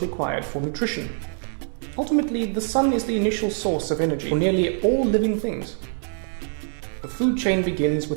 required for nutrition. Ultimately, the sun is the initial source of energy for nearly all living things. The food chain begins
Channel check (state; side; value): silent; left; 61 dB below the other